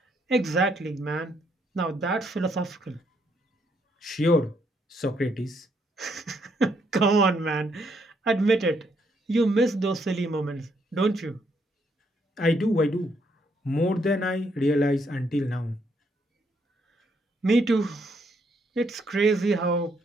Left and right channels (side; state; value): both; normal; correlation 0.73